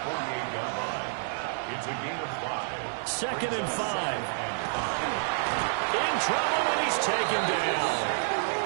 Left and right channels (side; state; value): left; silent; digital silence